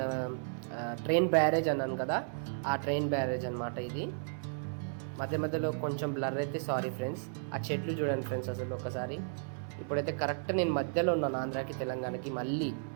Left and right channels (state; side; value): silent; left; 55 dB below the other